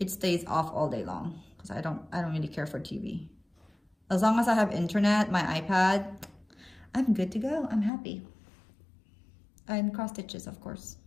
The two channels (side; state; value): right; drops out; at 7.9 s